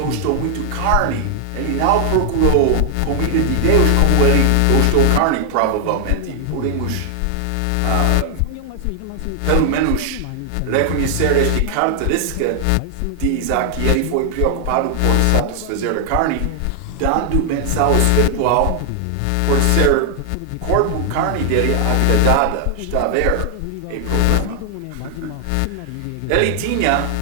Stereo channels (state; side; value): different; both; correlation 0.00